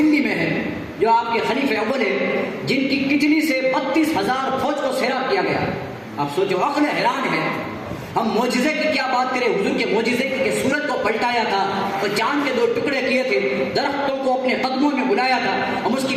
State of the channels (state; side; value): identical; both; correlation 1.00